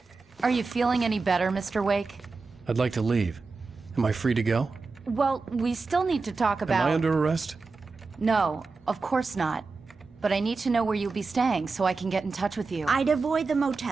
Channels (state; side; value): quieter; left; 4.2 dB